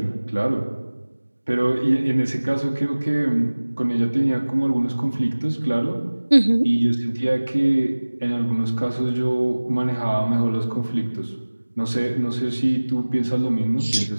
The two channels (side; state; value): both; inverted; correlation -1.00